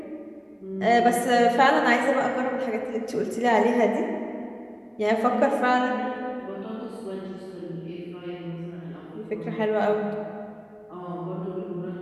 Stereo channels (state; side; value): identical; both; correlation 1.00